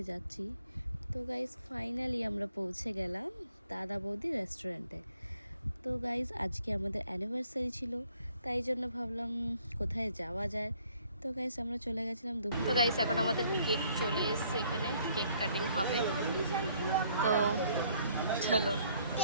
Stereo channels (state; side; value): inverted; both; correlation -0.64